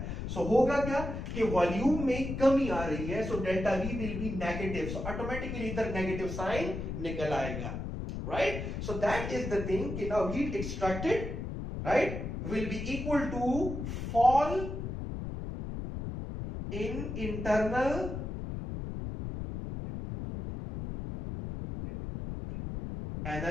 सो होगा क्या कि वॉल्यूम में कमी आ रही है, so delta V will be negative, so automatically इधर नेगेटिव साइन निकल आएगा, right. So that is the thing कि now heat extracted, right, will be equal to fall in internal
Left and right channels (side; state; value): left; noise; rumble, 5 dB below the sound